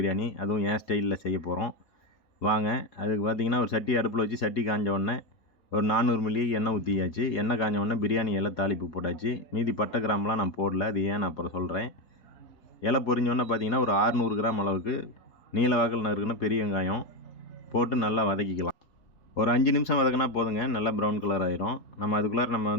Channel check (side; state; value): right; late; 4.8 ms